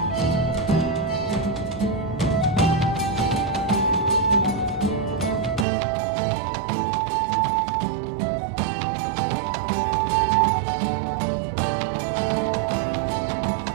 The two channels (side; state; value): left; drops out; at 5.7 s